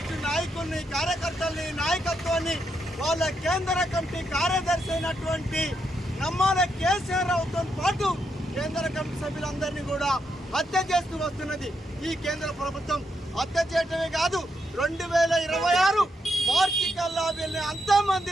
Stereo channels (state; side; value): normal; both; correlation 0.80